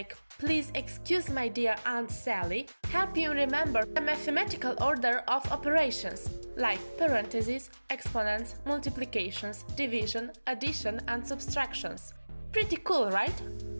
"Please excuse my dear Aunt Sally" help you remember the mathematical order of operations like parentheses, exponents, multiplications, division, addition, and subtractions. Pretty cool, right?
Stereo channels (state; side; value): inverted; both; correlation -1.00